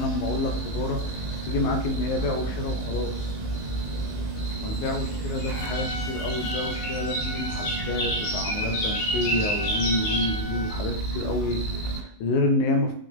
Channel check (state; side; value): late; right; 19 ms